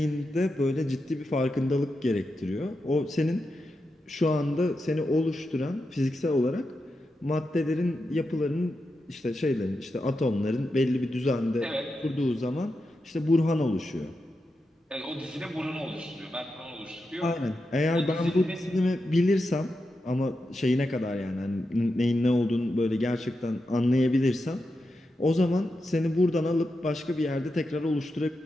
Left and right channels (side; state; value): both; normal; correlation 0.88